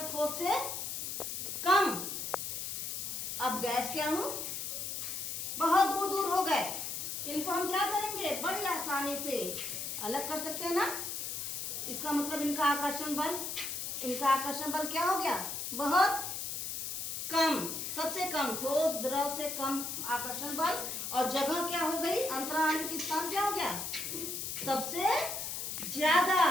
ठोस से कम। अब गैस के अणु बहुत दूर दूर हो गए, इनको हम क्या करेंगे? बड़ी आसानी से अलग कर सकते हैं ना। इसका मतलब इनका आकर्षण बल क्या हो गया? बहुत कम, सबसे कम। ठोस द्रव से कम आकर्षण बल। और जगह क्या हो गई? अंतराण्विक स्थान क्या हो गया? सबसे ज्यादा।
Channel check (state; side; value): noise; left; hiss, 4 dB below the sound